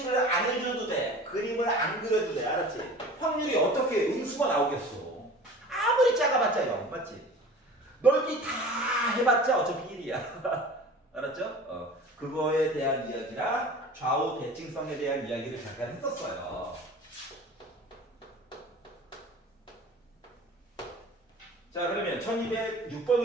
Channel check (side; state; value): both; normal; correlation 0.41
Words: 안 해줘도 돼. 그림을 안 그려도 돼. 알았지? 확률이 어떻게 음수가 나오겠어. 아무리 작아봤자 0, 맞지? 넓이 다 해봤자 어차피 1이야. 알았죠? 그거에 대한 이야기랑 좌우 대칭성에 대한 이야기를 잠깐 했었어요. 자, 그러면